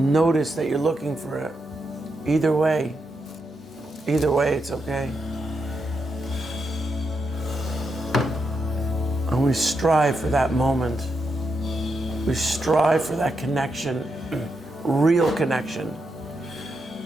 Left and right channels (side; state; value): both; normal; correlation 0.84